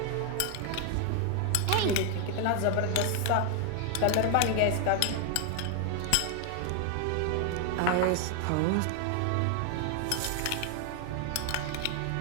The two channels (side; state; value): both; different; correlation 0.00